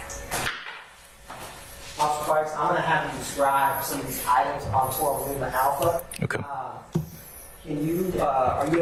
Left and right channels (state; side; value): identical; both; correlation 1.00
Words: Officer Fikes, I'm going to have you describe some of these items on 12 Lima Alpha. Okay. Can you, are you